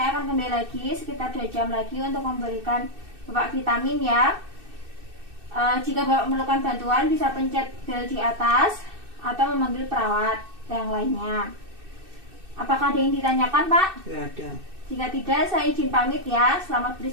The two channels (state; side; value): late; left; 2.6 ms